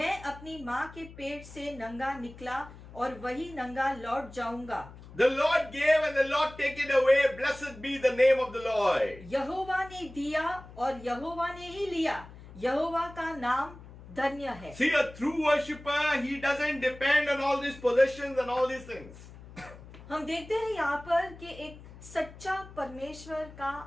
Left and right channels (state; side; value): noise; left; hum, 17 dB below the sound